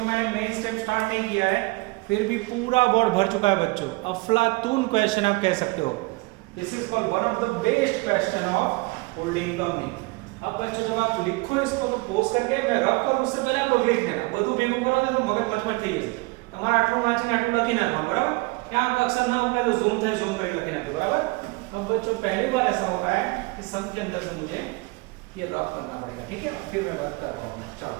मैंने मेन स्टेप स्टार्ट नहीं किया है फिर भी पूरा बोर्ड भर चुका है बच्चों। अफलातून क्वेश्चन आप कह सकते हो। This is called one of the best question of holding company. अब बच्चों जब आप लिखो इसको तो पोस्ट करके मैं रब करूं उससे पहले आप लोग लिख देना, બધું ભેગું કરો તો મગજ મચમચ થઈ જશે તમારે। આટલું વાંચીને આટલું લખી નાખવાનું બરાબર। क्या अक्षर ना पहले जूम थे जूम करके लखी नाखो बराबर। अब बच्चों पहली बार ऐसा हो रहा है कि सब के अंदर से मुझे ये रब करना पड़ेगा, ठीक है फिर मैं बात कर रहा हूं। चलो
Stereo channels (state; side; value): quieter; left; 25.1 dB